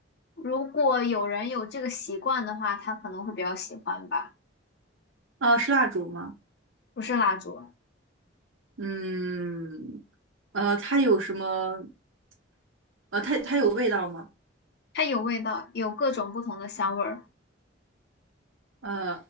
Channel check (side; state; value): both; normal; correlation -0.12